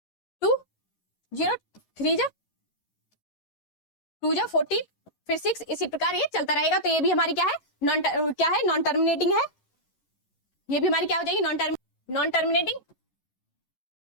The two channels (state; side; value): late; right; 11 ms